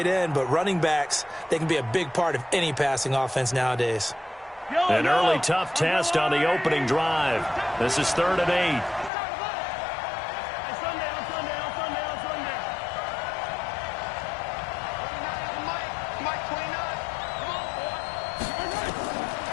end, but running backs, they can be a big part of any passing offense nowadays. An early tough test on the opening drive. This is 3rd and 8.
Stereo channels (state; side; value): drops out; right; at 9.1 s